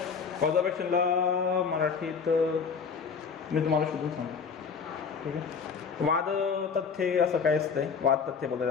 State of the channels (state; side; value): quieter; right; 5.9 dB